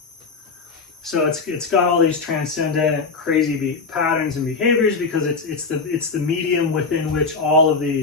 So it's got all these transcendent, crazy patterns and behaviors because it's the medium within which all of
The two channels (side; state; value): right; quieter; 4.5 dB